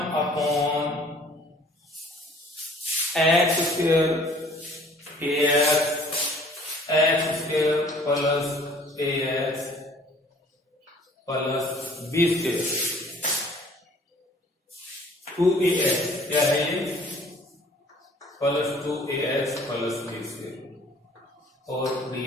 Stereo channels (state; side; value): normal; both; correlation 0.54